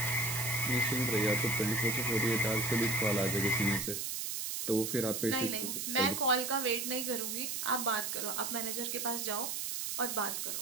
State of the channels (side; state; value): right; noise; hiss, 3 dB below the sound